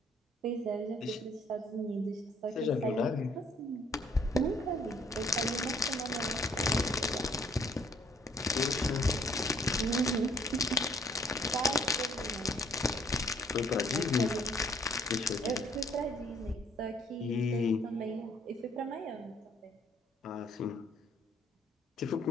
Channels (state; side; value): normal; both; correlation 0.63